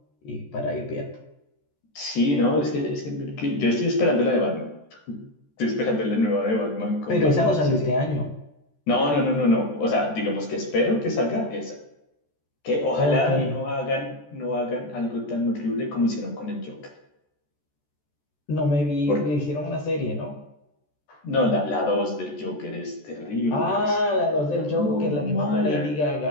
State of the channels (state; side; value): late; right; 14 ms